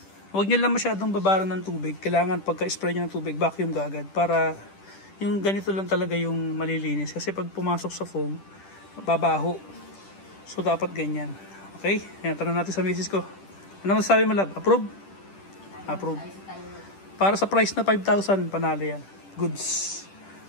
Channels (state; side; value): late; right; 10 ms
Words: Huwag nyo lang masyadong babaran ng tubig. Kailangan pagka-spray nyo ng tubig, vacuum agad. Para yung ganito lang talaga yung malilinis. Kasi pag pumasok sa foam, babaho. So dapat ganyan. Okay? Ayan, tanong natin sa misis ko. Ano masasabi mo, love? Approve? Approve. Para sa price na 5,000, panalo yan. Goods.